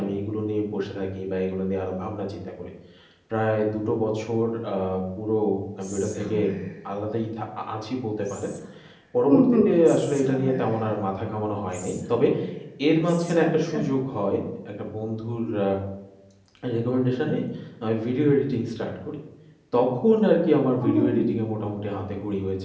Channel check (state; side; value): identical; both; correlation 1.00